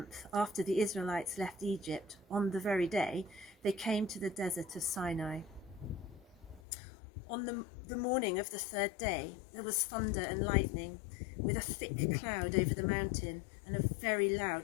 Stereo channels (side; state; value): right; drops out; at 6.6 s